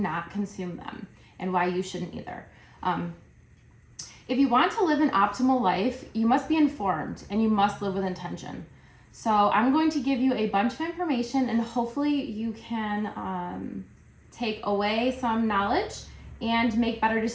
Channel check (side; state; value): both; identical; correlation 1.00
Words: consume them and why you shouldn't either. If you want to live an optimal life, you must be informed and you must live with intention. So I'm going to give you a bunch of information and hopefully you can take away some knowledge and make better